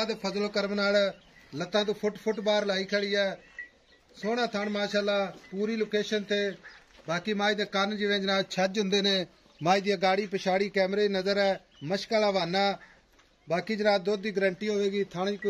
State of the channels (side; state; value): both; identical; correlation 1.00